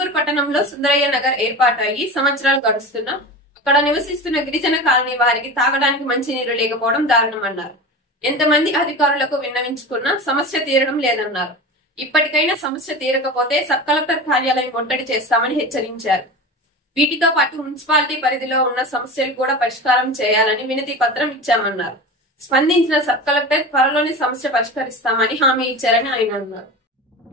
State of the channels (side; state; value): both; normal; correlation 0.29